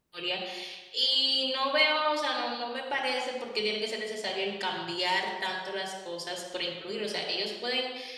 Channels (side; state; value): both; identical; correlation 1.00